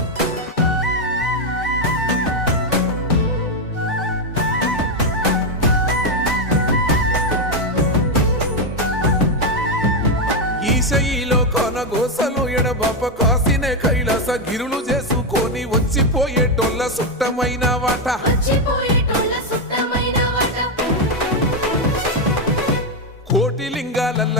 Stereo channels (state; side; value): normal; both; correlation 0.06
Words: ఈశయిలో కొనగోసలు ఎడబాప కాసినే కైలాస గిరులు చేసుకొని వచ్చిపోయేటోళ్ళ సుట్టమైన వాట వచ్చిపోయేటోళ్ళ సుట్టమైన వాట కోటి లింగాలల్ల